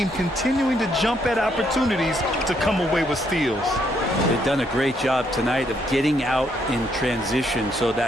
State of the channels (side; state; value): both; normal; correlation 0.73